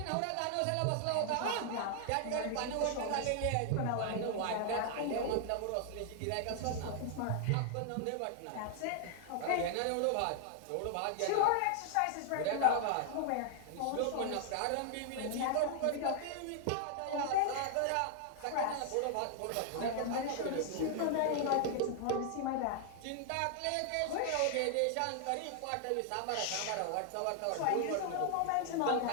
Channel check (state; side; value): different; both; correlation 0.00